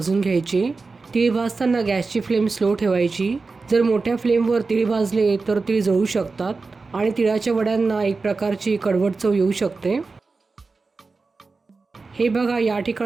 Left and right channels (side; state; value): left; quieter; 4.1 dB